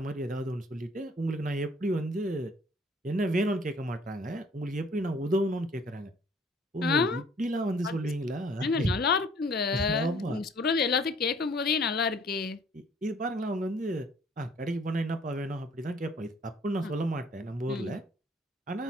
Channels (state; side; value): normal; both; correlation 0.57